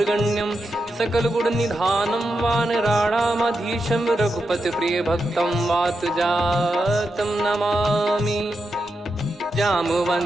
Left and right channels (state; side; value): normal; both; correlation 0.87